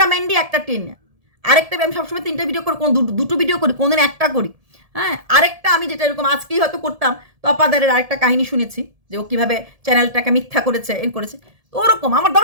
ম্যান্ডি একটা টিনা। আরেকটা আমি সবসময় 3টে ভিডিও করি, কোন 2টো ভিডিও করি, কোনদিন একটা করি। হ্যাঁ, আরেকটা আমি যেটা এরকম আজকেই হয়তো করতাম, তপাদারের আরেকটা কাহিনী শুনেছি যে ও কীভাবে চ্যানেলটাকে মিথ্যা করেছে, করেছে। তো ওরকম আমার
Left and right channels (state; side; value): late; left; 1.7 ms